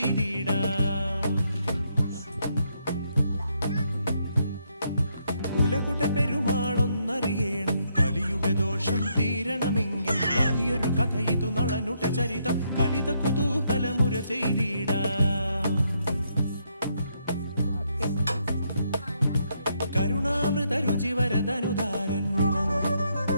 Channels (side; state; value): both; inverted; correlation -0.75